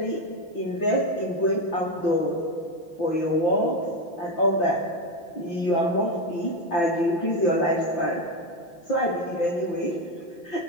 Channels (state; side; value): late; right; 5.8 ms